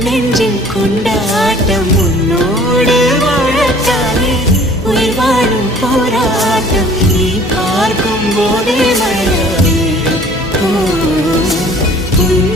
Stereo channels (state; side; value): normal; both; correlation 0.52